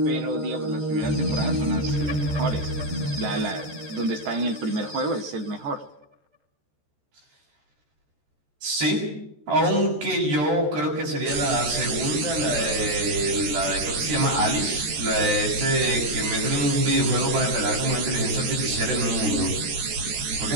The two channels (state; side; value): late; left; 14 ms